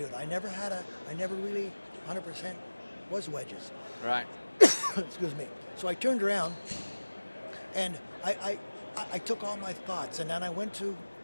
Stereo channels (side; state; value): both; inverted; correlation -1.00